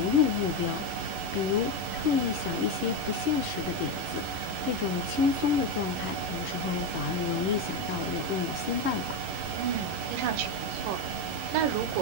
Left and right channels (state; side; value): late; left; 11 ms